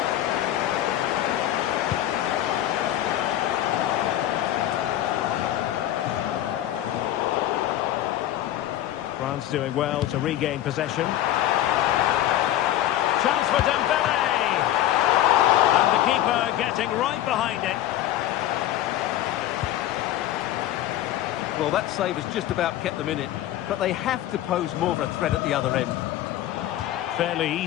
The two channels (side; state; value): right; quieter; 13.0 dB